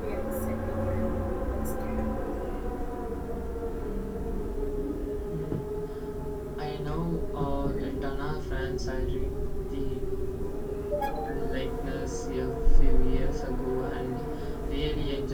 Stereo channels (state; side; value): identical; both; correlation 1.00